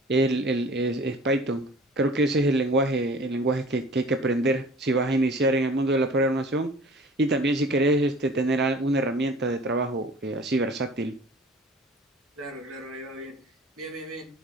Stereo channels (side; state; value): both; normal; correlation 0.45